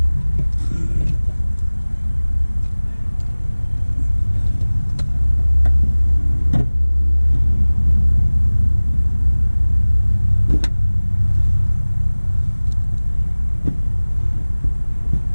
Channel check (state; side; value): inverted; both; correlation -1.00